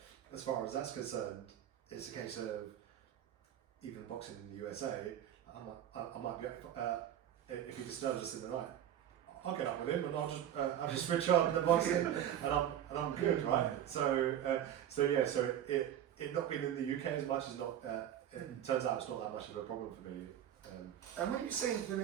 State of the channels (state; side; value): quieter; left; 10.6 dB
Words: as far as that's concerned, it's a case of even boxing in the USA. I might be if he disturbs us in the night, I'll get up with him and I'll just switch on the boxing and I'm good, right? So it not being in the UK as much is not. It turns out it's not that much of a problem for me. And when they